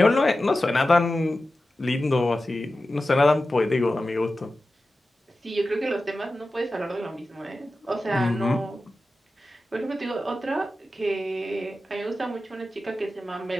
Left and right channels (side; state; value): both; normal; correlation 0.94